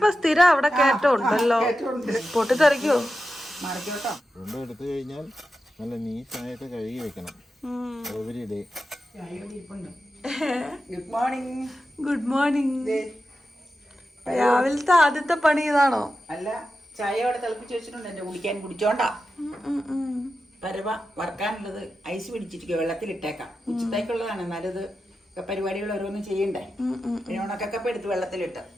സ്ഥിരം അവിടെ കയറ്റം ഉണ്ടല്ലോ. പൊട്ടിത്തെറിക്കോ? മറിക്കോട്ടോ. രണ്ടും എടുത്തു കഴിഞ്ഞാൽ നല്ല നീറ്റായിട്ട് കഴുകി വെക്കണം. Every day. Good morning. Good morning. രാവിലത്തെ ആദ്യത്തെ പണി ഇതാണോ? അല്ല, ചായ അവിടെ തിളപ്പിച്ച് വെച്ചിട്ടുണ്ട്. എന്റെ കുടിക്കാൻ കുടിച്ചോണ്ടാ. പരവ വറക്കാനുള്ളത് ഐസ് പിടിച്ചിരിക്കുക, വെള്ളത്തിലിട്ടേക്കാം. ഉച്ചത്തേക്കുള്ളതാണ്. എന്നാലും ഇത് പരിപാടികൾ ഓരോന്നും ചെയ്യണ്ടേ. പിന്നെ ഉണക്കൊക്കെ എടുത്ത് വെള്ളത്തിലിട്ട്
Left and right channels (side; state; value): both; normal; correlation 0.91